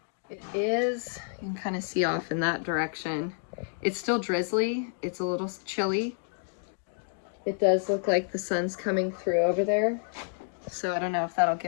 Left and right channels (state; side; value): silent; right; digital silence